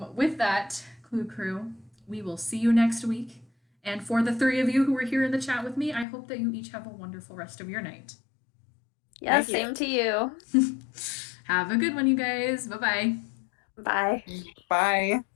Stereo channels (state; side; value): drops out; right; at 6.1 s